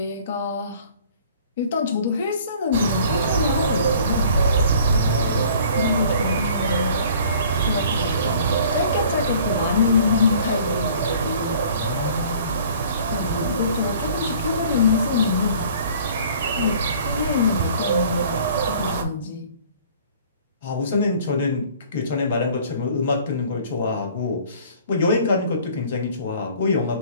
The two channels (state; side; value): inverted; both; correlation -0.52